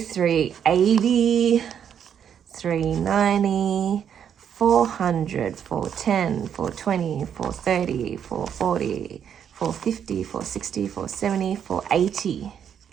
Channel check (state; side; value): quieter; left; 8.5 dB